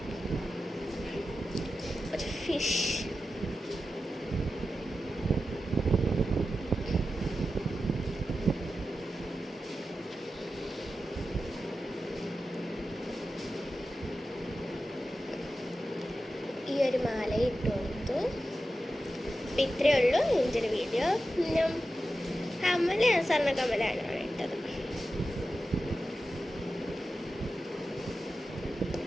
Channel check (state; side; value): normal; both; correlation 0.92